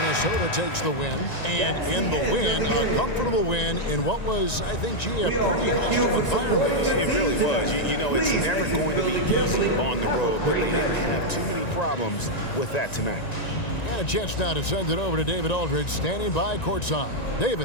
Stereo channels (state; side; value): late; right; 1.9 ms